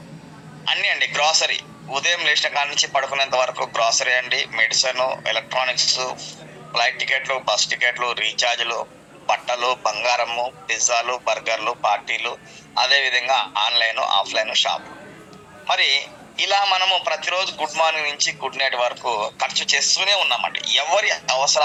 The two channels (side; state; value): both; identical; correlation 1.00